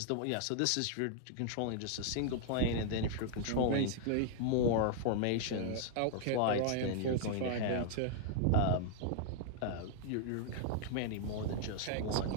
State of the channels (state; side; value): different; both; correlation -0.01